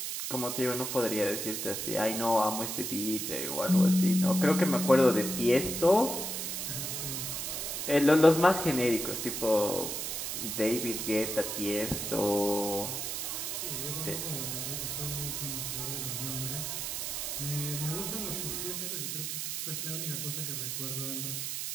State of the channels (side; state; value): right; noise; hiss, 3 dB below the sound